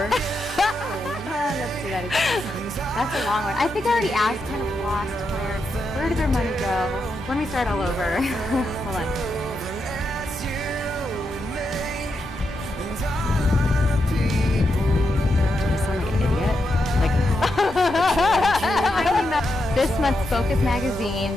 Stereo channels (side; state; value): both; normal; correlation 0.84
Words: Let's do that again. That's a long one. I think I already asked, kind of lost where did their money go? Let me start all over. Hold on. Do I sound like an idiot? Like, This month's Focus